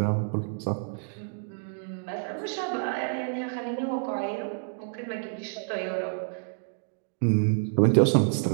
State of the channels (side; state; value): left; silent; digital silence